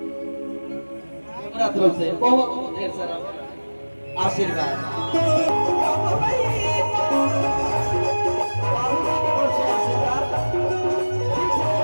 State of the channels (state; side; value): inverted; both; correlation -1.00